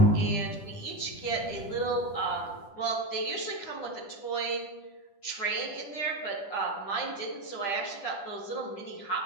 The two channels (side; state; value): right; late; 10 ms